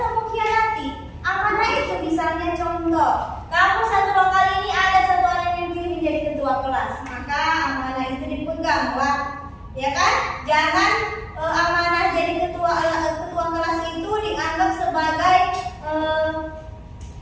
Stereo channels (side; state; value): both; identical; correlation 1.00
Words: khianati. Amanah itu misalnya contoh, kamu satu lokal ini ada satu orang yang dipilih menjadi ketua kelas, maka amanah itu dipegang, Pak. Ya kan? Jangan amanah jadi ketua kelas itu dianggap sebagai